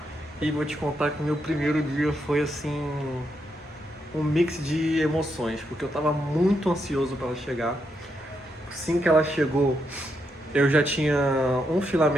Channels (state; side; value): normal; both; correlation 0.81